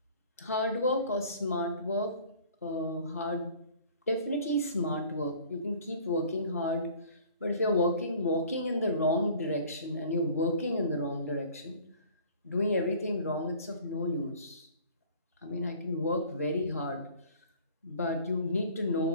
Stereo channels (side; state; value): both; inverted; correlation -0.49